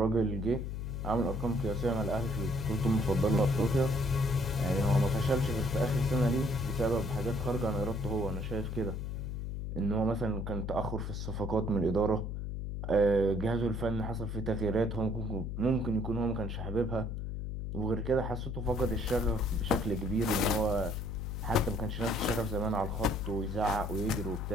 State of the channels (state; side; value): noise; left; hum, 4 dB below the sound